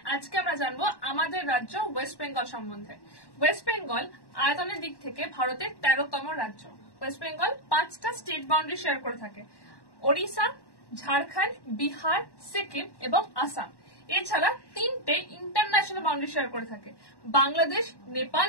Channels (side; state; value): right; late; 1.1 ms